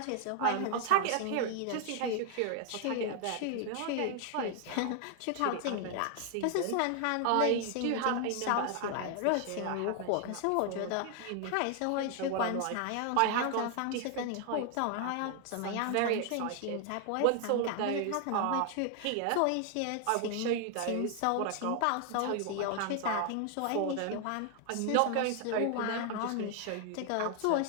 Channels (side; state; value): both; different; correlation 0.00